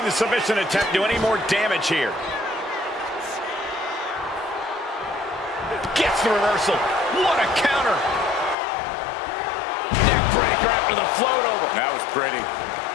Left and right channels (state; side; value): drops out; right; at 8.6 s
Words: the submission attempt do any more damage here. Gets the reversal. What a counter. Neck breaker after the float over. That was pretty.